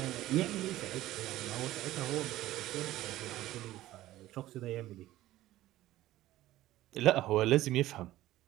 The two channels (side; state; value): left; quieter; 15.3 dB